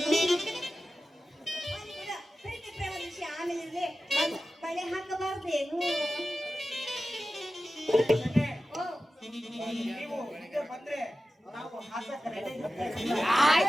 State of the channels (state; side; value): normal; both; correlation 0.94